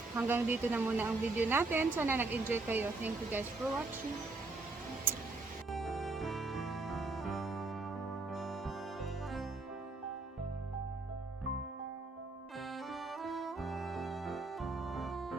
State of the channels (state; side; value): quieter; left; 3.4 dB